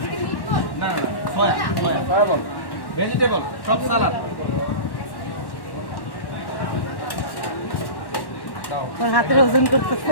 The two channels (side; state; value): right; late; 1.1 ms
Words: না না সয়া বল ভেজিটেবল সব সালাদ। ওর হাতের ওজন